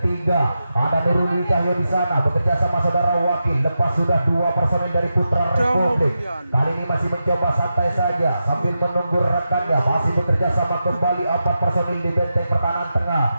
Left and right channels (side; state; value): both; inverted; correlation -0.89